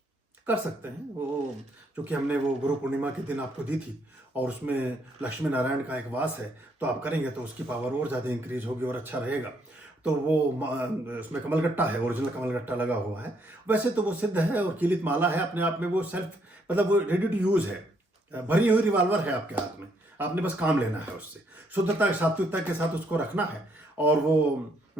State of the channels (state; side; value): normal; both; correlation 0.71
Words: कर सकते हैं। वो चूंकि हमने वो गुरु पूर्णिमा के दिन आपको दी थी और उसमें लक्ष्मी नारायण का एक वास है, तो आप करेंगे तो उसकी पावर और ज़्यादा इंक्रीज होगी और अच्छा रहेगा। तो वो उसमें कमलगट्टा है, ओरिजिनल कमलगट्टा लगा हुआ है। वैसे तो वो सिद्ध है और कीलित माला है अपने आप में, वो सेल्फ मतलब वो रेडी टू यूज़ है, भरी हुई रिवॉल्वर है आपके हाथ में, आपने बस काम लेना है उससे, शुद्धता सात्विकता के साथ उसको रखना है और वो